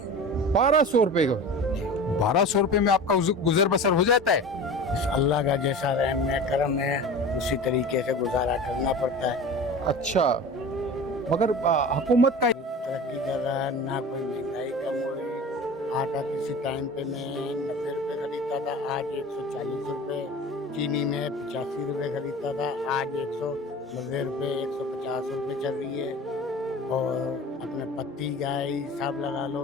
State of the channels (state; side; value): normal; both; correlation 0.35